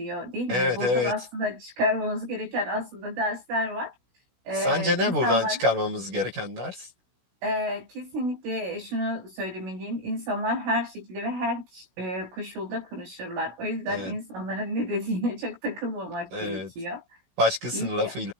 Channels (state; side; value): late; left; 16 ms